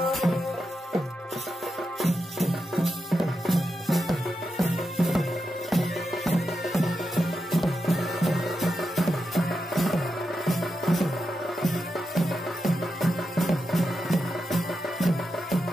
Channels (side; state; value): both; normal; correlation 0.88